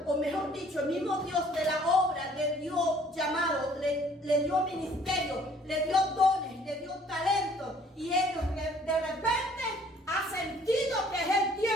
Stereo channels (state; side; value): normal; both; correlation 0.57